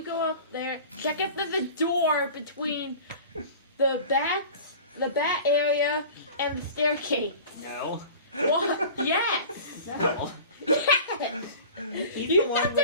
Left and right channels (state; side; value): inverted; both; correlation -0.39